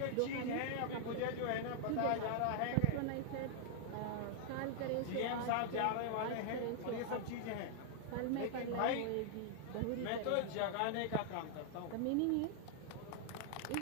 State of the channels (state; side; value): different; both; correlation 0.00